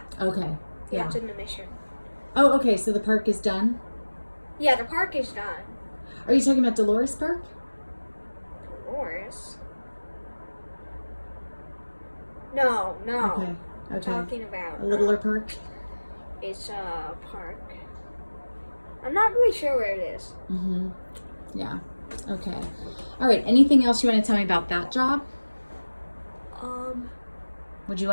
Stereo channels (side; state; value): both; inverted; correlation -1.00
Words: Okay. Yeah. it's in the Mission. Oh, okay. So the park is done? Yeah, the park is done. Are you talking about Dolores Park? Dolores? No. Okay. I'm Okay. talking about A littler park? it's a park. I'm not really sure where it is. Mm-hmm. Yeah. Okay. All right. Anything else you want to tell me about that job? Would you